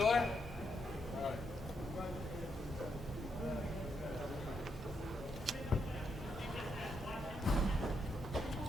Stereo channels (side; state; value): both; normal; correlation 0.80